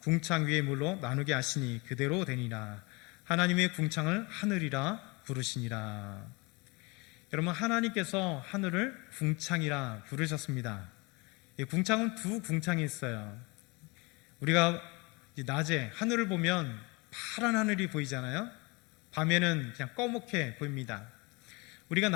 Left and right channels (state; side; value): quieter; right; 27.2 dB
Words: 궁창 위의 물로 나누게 하시니 그대로 되니라. 하나님의 궁창을 하늘이라 부르시니라. 여러분, 하나님께서 하늘을 궁창이라 부르셨습니다. 이 궁창은 두 궁창이 있어요. 우리가 낮에 하늘을 보면 파란 하늘이 보이잖아요. 밤에는 그냥 꺼멓게 보입니다. 우리가